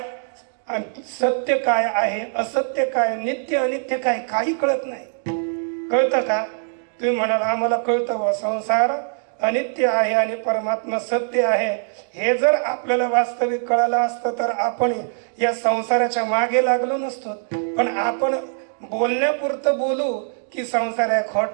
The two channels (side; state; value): left; silent; digital silence